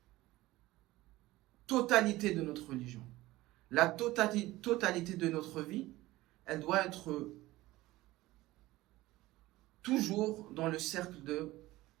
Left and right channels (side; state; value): left; quieter; 18.0 dB